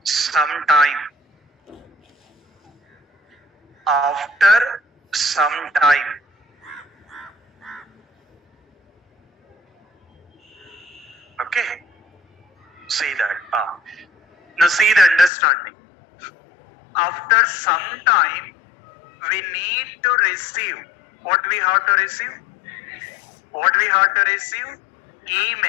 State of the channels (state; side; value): drops out; right; at 15.3 s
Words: some time. After some time. Okay. See that. Now see the understanding. After some time, we need to receive. What we have to receive?